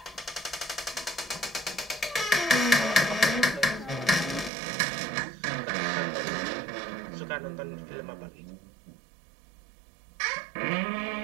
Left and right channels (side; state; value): left; drops out; at 4.5 s